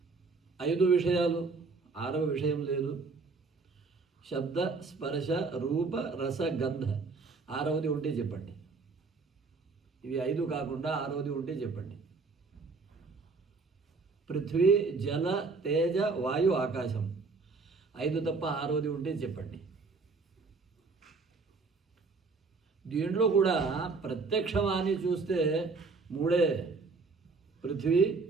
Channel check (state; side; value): quieter; left; 4.3 dB